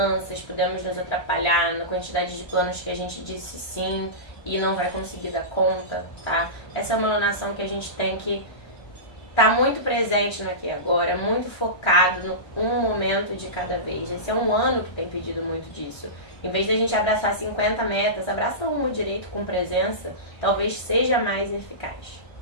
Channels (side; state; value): right; late; 1.3 ms